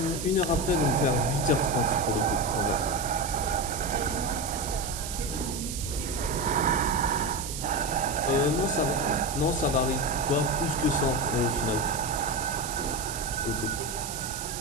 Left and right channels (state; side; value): noise; right; hiss, 7 dB below the sound